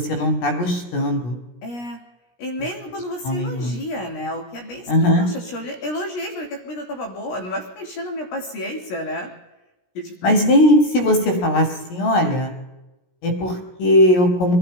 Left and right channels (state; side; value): late; right; 17 ms